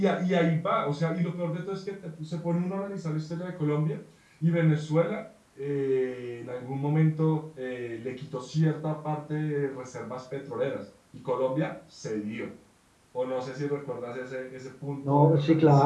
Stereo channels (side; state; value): both; identical; correlation 1.00